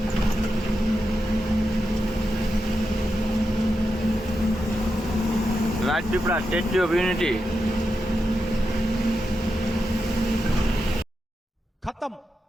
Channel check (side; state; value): both; normal; correlation 0.88